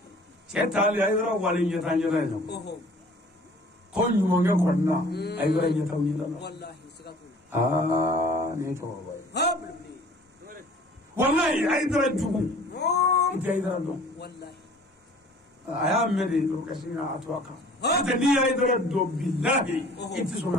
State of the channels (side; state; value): both; normal; correlation 0.50